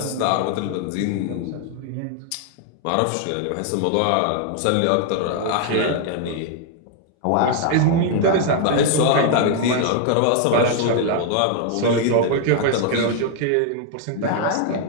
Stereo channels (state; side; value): different; both; correlation 0.00